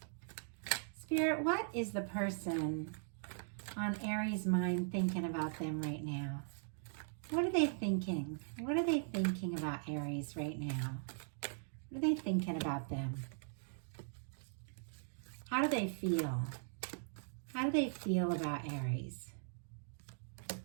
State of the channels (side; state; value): left; silent; digital silence